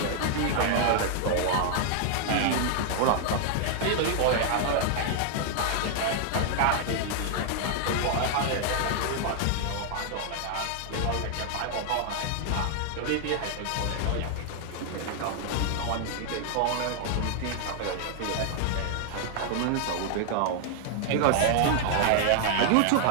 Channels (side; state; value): both; different; correlation 0.00